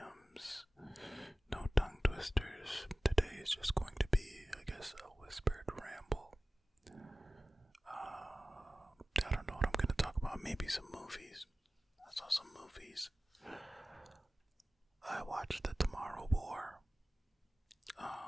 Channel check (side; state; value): both; normal; correlation 0.96